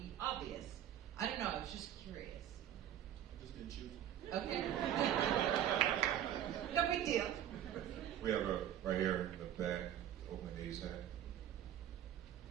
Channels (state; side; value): quieter; left; 10.9 dB